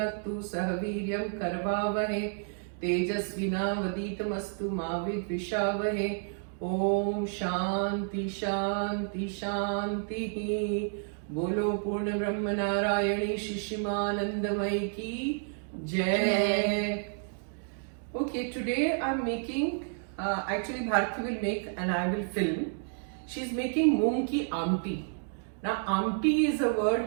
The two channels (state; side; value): silent; left; 57 dB below the other